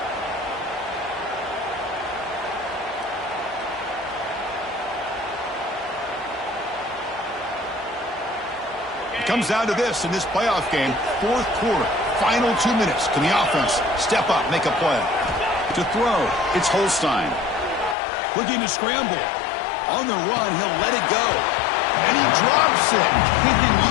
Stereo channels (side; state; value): right; drops out; at 17.9 s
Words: Comes down to this in this playoff game. Fourth quarter, final 2 minutes. Can the offense step up, make a play? To throw, it's Holstein. Looking to scramble. On the run, he'll let it go. And he drops it. Can